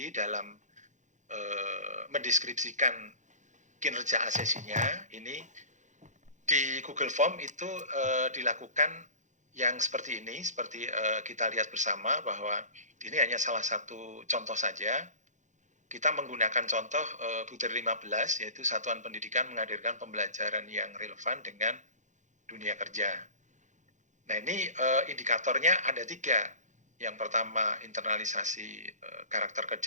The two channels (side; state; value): left; late; 0.35 ms